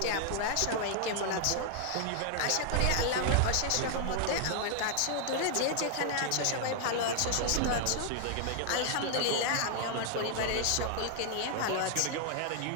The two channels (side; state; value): both; different; correlation 0.00